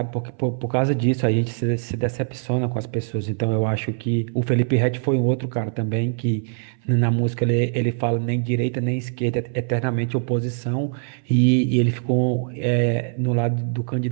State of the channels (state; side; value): silent; left; 60 dB below the other